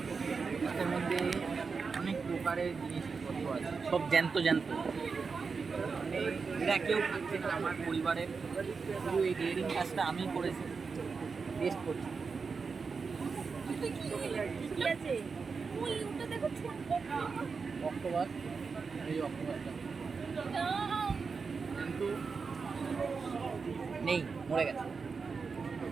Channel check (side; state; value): left; quieter; 5.0 dB